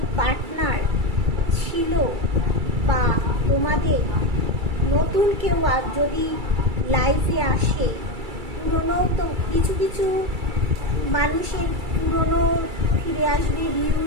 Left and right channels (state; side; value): late; left; 2.3 ms